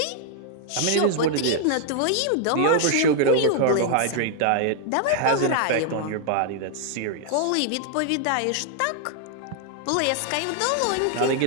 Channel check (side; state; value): both; different; correlation 0.00